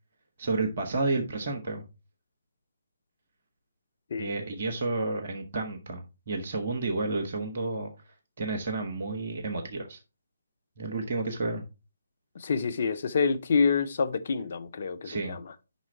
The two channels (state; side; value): inverted; both; correlation -0.73